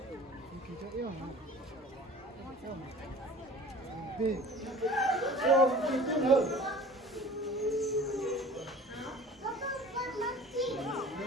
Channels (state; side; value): normal; both; correlation 0.42